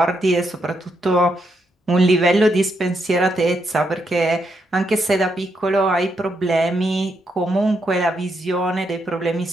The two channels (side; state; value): both; normal; correlation 0.79